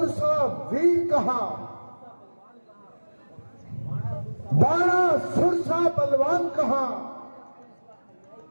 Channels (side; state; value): both; inverted; correlation -1.00